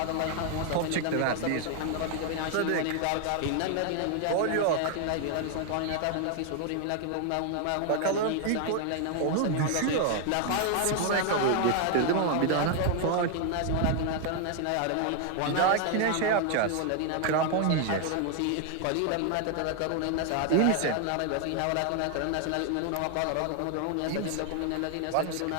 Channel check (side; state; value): both; different; correlation 0.00